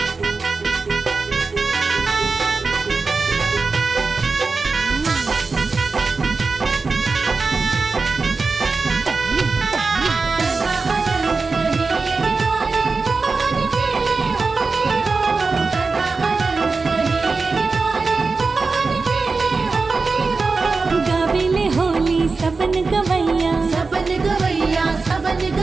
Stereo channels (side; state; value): left; quieter; 4.2 dB